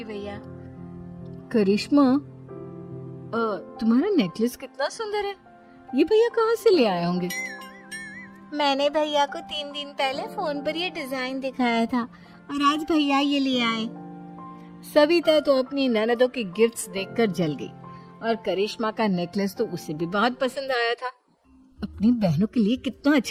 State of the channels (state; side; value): identical; both; correlation 1.00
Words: भैया। करिश्मा, तुम्हारा नेकलेस कितना सुंदर है। ये भैया कहाँ से ले आए होंगे? मैंने भैया को 3 दिन पहले फोन पर ये डिजाइन दिखाया था और आज भैया ये ले आए। सविता तो अपनी ननदों के गिफ्ट्स देखकर जल गई और करिश्मा का नेकलेस तो उसे भी बहुत पसंद आया था। अपनी बहनों के लिए कितना